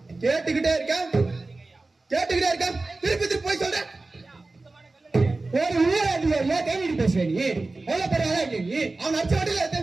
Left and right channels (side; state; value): left; quieter; 3.3 dB